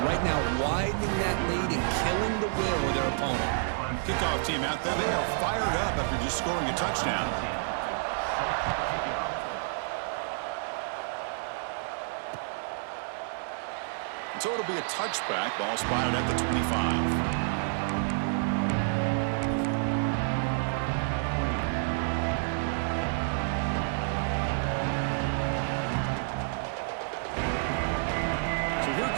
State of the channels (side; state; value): left; silent; digital silence